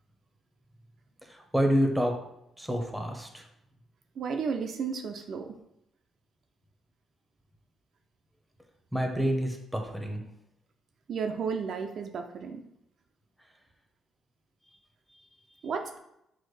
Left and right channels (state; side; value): normal; both; correlation 0.87